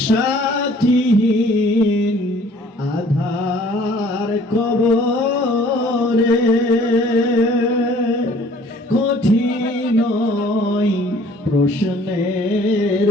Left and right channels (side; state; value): both; normal; correlation 0.55